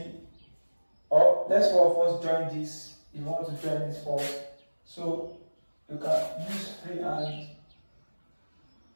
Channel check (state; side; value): inverted; both; correlation -1.00